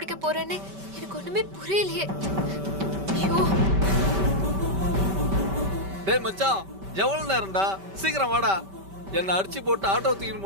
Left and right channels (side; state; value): left; late; 5.2 ms